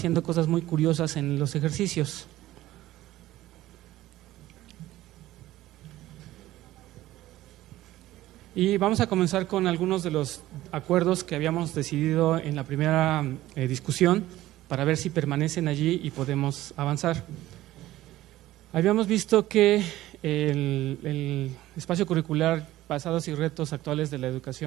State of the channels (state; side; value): quieter; left; 15.6 dB